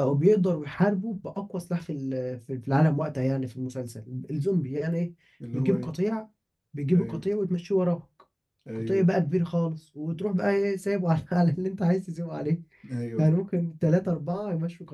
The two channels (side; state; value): both; identical; correlation 1.00